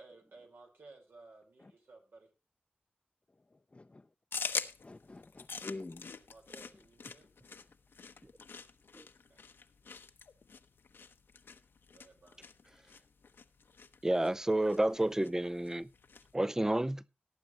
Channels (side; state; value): both; normal; correlation 0.87